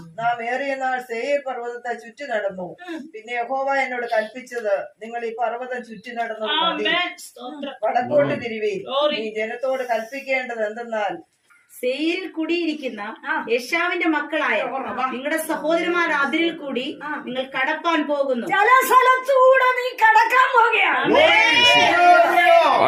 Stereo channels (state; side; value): identical; both; correlation 1.00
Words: നാം ഏറിയ നാൾ സേയീർ പർവ്വതത്തെ ചുറ്റി നടന്നു. പിന്നെ യഹോവ എന്നോട് കൽപ്പിച്ചത്, നിങ്ങൾ ഈ പർവ്വതം ചുറ്റി നടന്നു മതി, വടക്കോട്ട് തിരിവീൻ. ഈ ജനത്തോട് കൽപ്പിക്കേണ്ടത് എന്തെന്നാൽ, സേയിരിൽ കുടിയിരിക്കുന്ന യേശാവിന്റെ മക്കളായ നിങ്ങളുടെ സഹോദരന്മാർ അതിരിൽ കൂടി നിങ്ങൾ കടപ്പാൻ പോകുന്നു. ചില സ്ഥലത്തൂടെ നീ കടക്കാൻ പോകുകയാണ്.